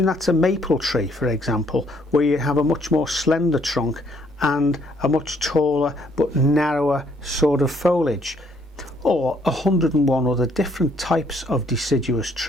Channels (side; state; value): both; normal; correlation 0.67